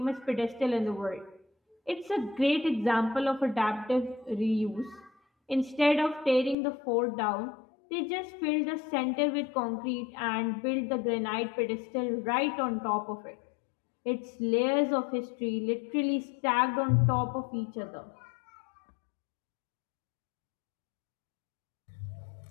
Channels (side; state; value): right; drops out; at 6.6 s